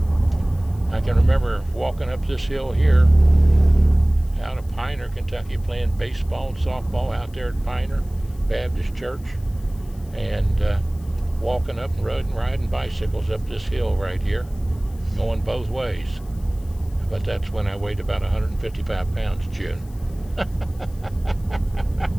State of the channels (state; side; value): noise; left; hiss, 26 dB below the sound